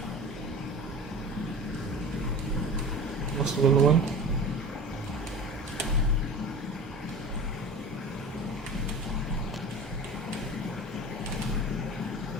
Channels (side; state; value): both; normal; correlation 0.36